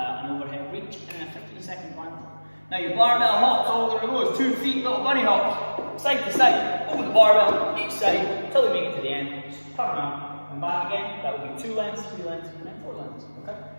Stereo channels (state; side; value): inverted; both; correlation -1.00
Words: overhead reach, and a 15-second plank. Now your barbell hops, all there goes, 2 feet, little bunny hops, side to side, over the barbell, each side, until we make it to the end. Just turn around and back again. That would be 2 lengths, 3 lengths, and then 4 lengths, okay?